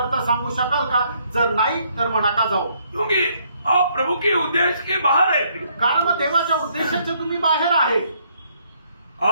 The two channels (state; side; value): inverted; both; correlation -0.69